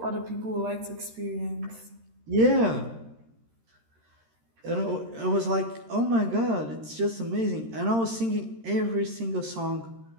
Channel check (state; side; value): late; left; 13 ms